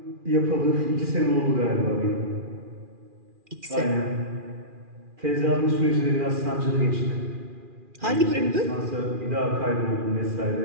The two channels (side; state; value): left; late; 2.4 ms